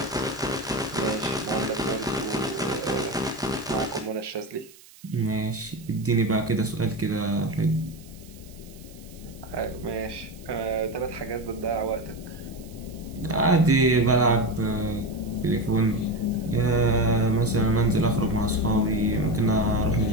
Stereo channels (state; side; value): noise; right; hiss, 23 dB below the sound